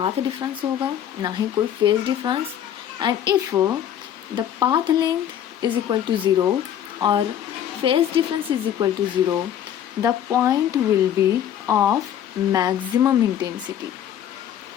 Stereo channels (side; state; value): right; quieter; 10.1 dB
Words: डिफरेंस होगा ना ही कोई phase difference. And if the path length is equal to 0 और phase difference is equal to 0, the point will be of maximum intensity.